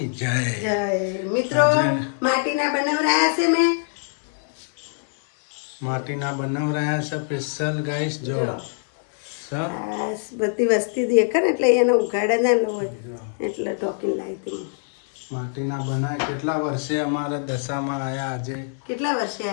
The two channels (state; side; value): silent; right; digital silence